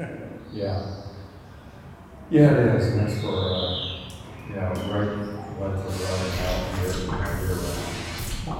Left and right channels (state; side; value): identical; both; correlation 1.00